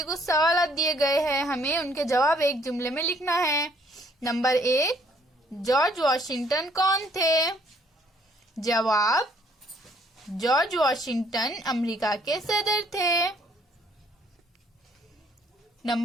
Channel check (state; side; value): normal; both; correlation 0.64